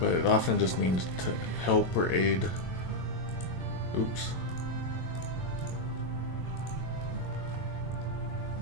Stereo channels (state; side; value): late; right; 22 ms